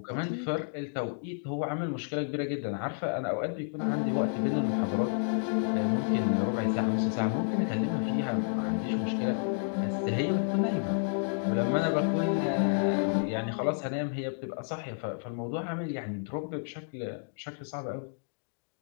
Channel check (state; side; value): silent; right; digital silence